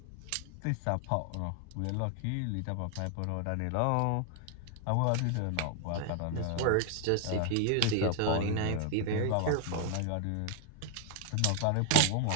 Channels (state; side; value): different; both; correlation 0.00